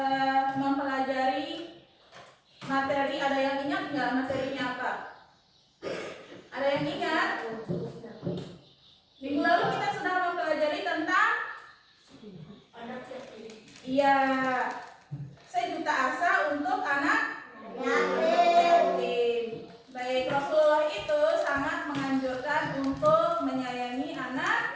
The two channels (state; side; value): identical; both; correlation 1.00